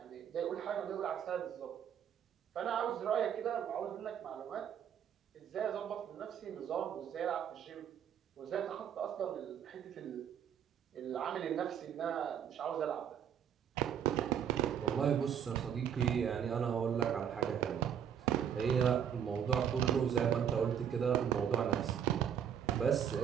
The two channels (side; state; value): left; quieter; 8.7 dB